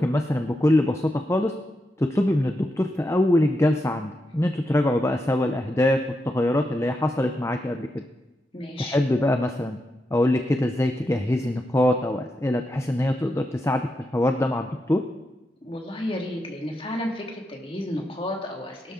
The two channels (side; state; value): both; normal; correlation 0.85